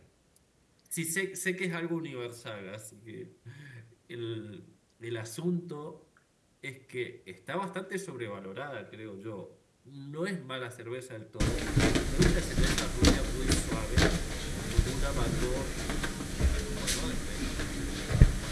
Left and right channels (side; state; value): both; identical; correlation 1.00